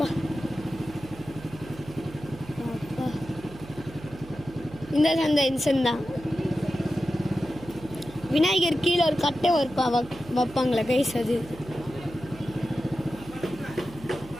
அப்பா இந்த சந்தை இன்சன் தான். விநாயகர் கீழே ஒரு கட்டை வைப்பாங்களே கைஸ் அது.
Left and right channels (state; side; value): noise; right; hum, 17 dB below the sound